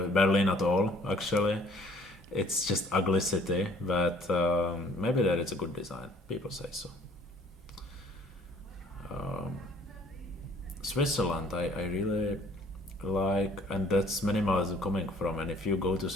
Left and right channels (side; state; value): both; normal; correlation 0.57